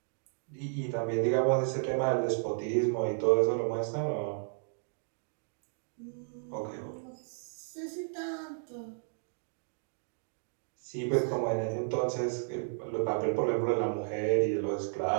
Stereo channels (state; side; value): silent; left; digital silence